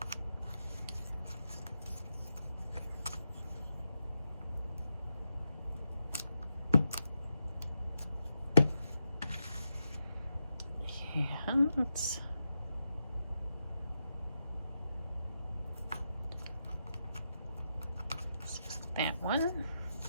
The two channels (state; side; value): inverted; both; correlation -0.86